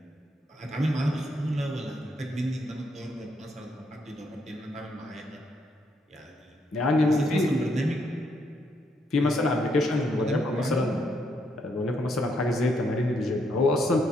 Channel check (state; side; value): normal; both; correlation 0.75